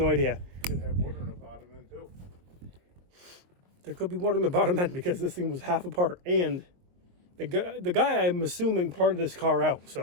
idea. Could have water in the bottom end too. There could be water in the bottom end because this thing was half apart. And the guy I'm assuming parted this car out.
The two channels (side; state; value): left; late; 22 ms